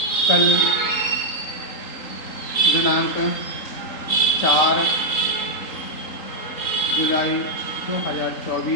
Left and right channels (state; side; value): late; right; 3.8 ms